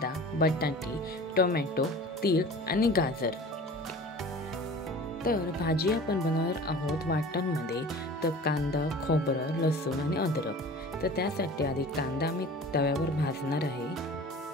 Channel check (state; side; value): normal; both; correlation 0.41